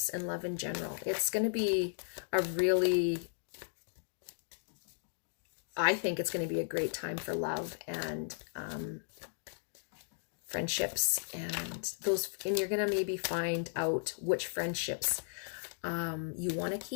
and love in general. It's going to be a really, I think it's going to be a great time for love and friendships, and you're going to maybe find out which friendships you want to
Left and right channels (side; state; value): right; silent; digital silence